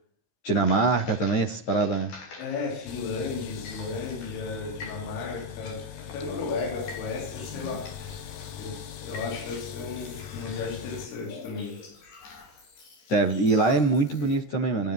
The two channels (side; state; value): right; late; 13 ms